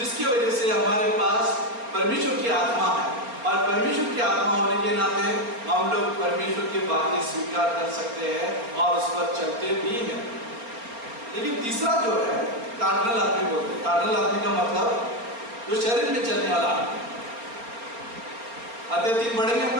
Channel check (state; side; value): late; left; 4.3 ms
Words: वजह से हमारे पास परमेश्वर की आत्मा है। और परमेश्वर की आत्मा होने के नाते हम लोग परमेश्वर की बातें स्वीकार कर सकते हैं और उस पर चलते भी हैं। लेकिन तीसरा जो है कार्नल आदमी बोलते हैं। कार्नल आदमी का मतलब जो शरीर में चलने वाला आदमी। अध्याय 3 पढ़ेंगे हम